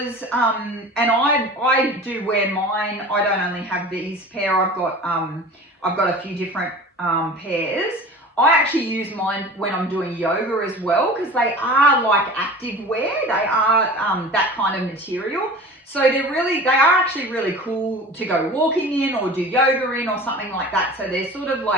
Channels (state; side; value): normal; both; correlation 0.38